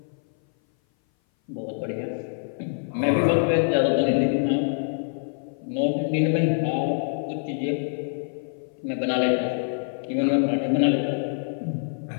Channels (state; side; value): silent; right; 58 dB below the other